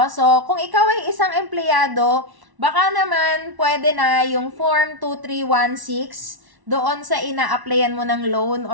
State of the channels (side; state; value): left; late; 1.1 ms